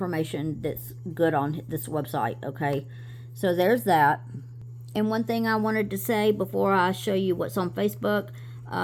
that's good on this website. Okay. So there's that. And one thing I wanted to say before I show you what's on Facebook,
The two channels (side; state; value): both; identical; correlation 1.00